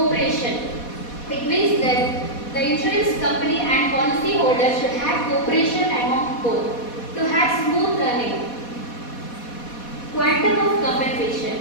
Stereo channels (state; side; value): late; right; 4.2 ms